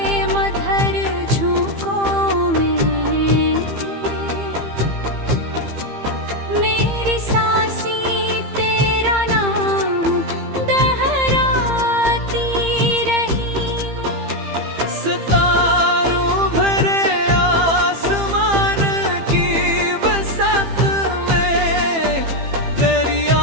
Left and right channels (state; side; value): late; left; 15 ms